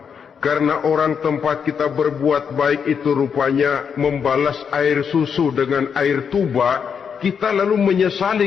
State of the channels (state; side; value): quieter; right; 6.8 dB